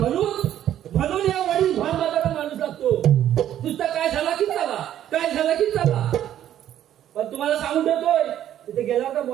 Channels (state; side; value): quieter; left; 11.3 dB